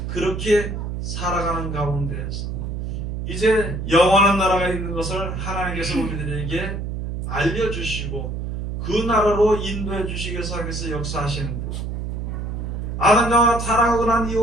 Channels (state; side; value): noise; right; hum, 4 dB below the sound